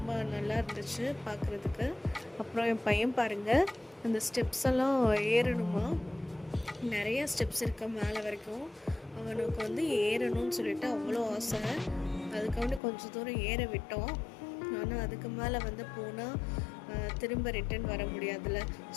நல்லா இருந்துச்சு பார்க்குறதுக்கு. அப்புறம் என் பையன் பாருங்கள், அந்த ஸ்டெப்ஸ் எல்லாம் ஏறணுமா, நிறையா ஸ்டெப்ஸ் இருக்க மேலே வரைக்கும். அவனுக்கு ஏறணும்னு சொல்லிட்டு அவ்வளோ ஆசை. அதுக்கு கொஞ்சம் தூரம் ஏற விட்டோம். ஆனால் அதுக்கு மேலே போனால் திரும்ப ரிட்டன் வர முடியாதுல்ல.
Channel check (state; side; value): drops out; right; at 12.8 s